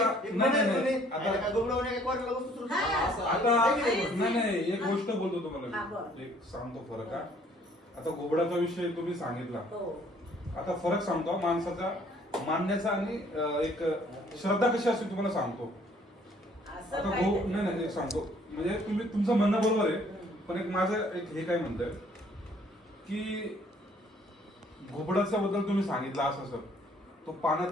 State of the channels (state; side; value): normal; both; correlation 0.60